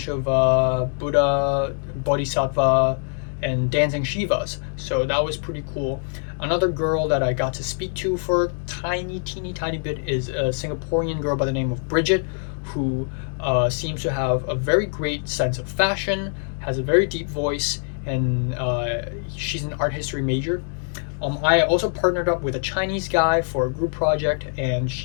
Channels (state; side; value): silent; right; 55 dB below the other